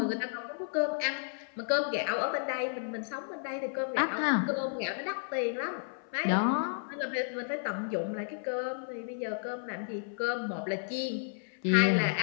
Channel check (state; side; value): silent; right; 56 dB below the other